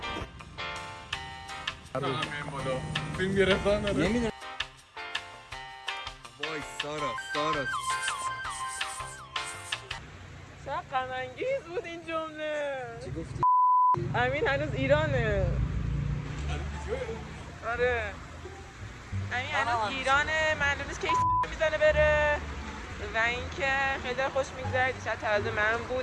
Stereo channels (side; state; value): both; identical; correlation 1.00